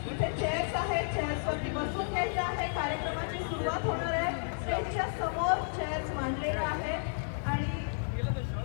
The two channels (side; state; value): right; silent; digital silence